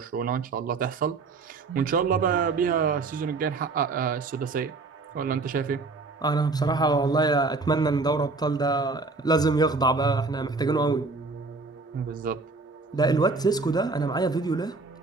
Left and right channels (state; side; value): quieter; left; 3.8 dB